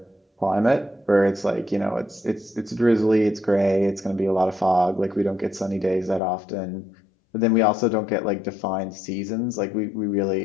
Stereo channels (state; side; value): drops out; right; at 6.2 s